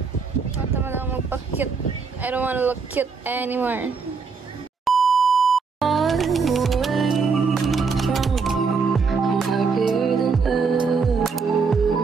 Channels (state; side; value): quieter; left; 5.1 dB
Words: Tama lang magpa-cute. I don't wanna look cute anymore.